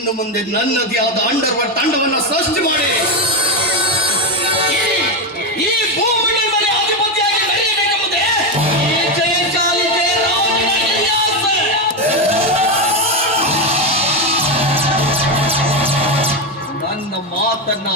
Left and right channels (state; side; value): normal; both; correlation 0.10